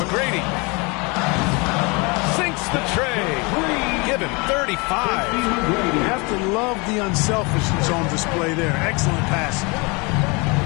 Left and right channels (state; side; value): quieter; right; 28.6 dB